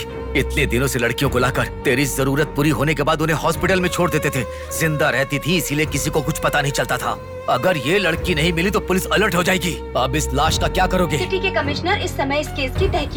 इतने दिनों से लड़कियों को लाकर तेरी जरूरत पूरी होने के बाद उन्हें हॉस्पिटल में छोड़ देते थे। जिंदा रहती थी इसीलिए किसी को कुछ पता नहीं चलता था। अगर ये लड़की नहीं मिली तो पुलिस अलर्ट हो जाएगी। अब इस लाश का क्या करोगे? सिटी के कमिश्नर इस समय इस केस की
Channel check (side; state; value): both; identical; correlation 1.00